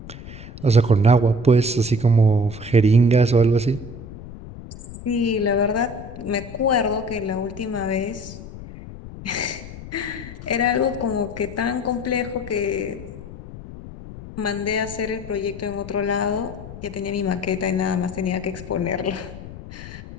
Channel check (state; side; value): noise; left; rumble, 13 dB below the sound